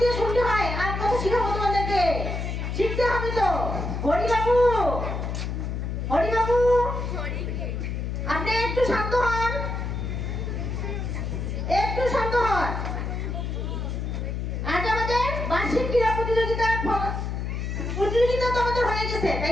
দিয়ে শুনতে হয়। আর কথা শিখাবো তোমাদেরকে, শিখতে হবে তো। হরিবাবু, হরিবাবু, আপনি একটু শান্ত হন, একটু শান্ত হন। আজ আমাদের বার্ষিক ক্রীড়া প্রতিযোগিতা তো আমাদের হয়ে গেছে, তাই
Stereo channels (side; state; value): left; noise; hum, 3 dB below the sound